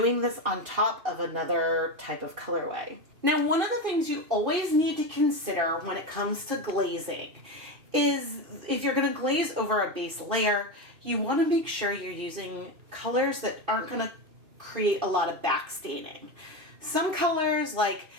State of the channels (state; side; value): late; left; 2.6 ms